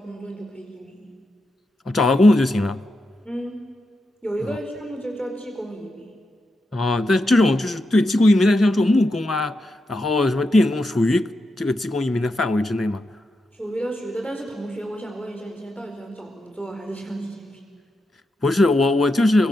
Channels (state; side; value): normal; both; correlation 0.86